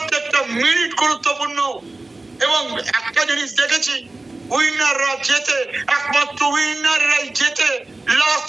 মিনিট গুরুত্বপূর্ণ। এবং একটা জিনিস দেখেছি, উইনাররা জেতে, একমাত্র উইনাররাই জেতে লাস্ট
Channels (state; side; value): quieter; left; 3.0 dB